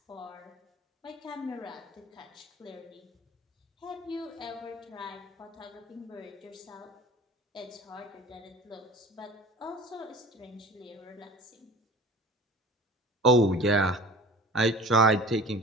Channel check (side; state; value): both; normal; correlation 0.42